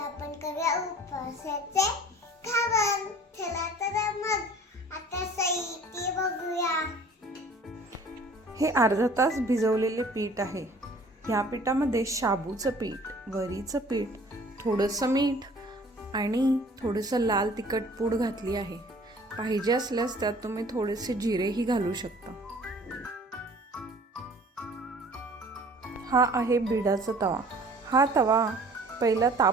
करूया उपवासाचे खावण. चला तर मग आता साहित्य बघूया. हे अर्धा तास भिजवलेले पीठ आहे. ह्या पिठामध्ये शाबूचं पीठ, वरीचं पीठ, थोडंसं मीठ आणि थोडंसं लाल तिखट पूड घातली आहे. पाहिजे असल्यास त्यात तुम्ही थोडेसे जिरेही घालू शकता. हा आहे बिडाचा तवा. हा तवा पहिला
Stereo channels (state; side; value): normal; both; correlation 0.50